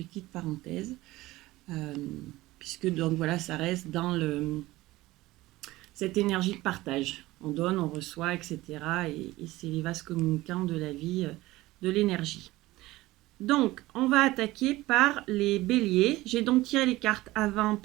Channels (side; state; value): left; quieter; 18.3 dB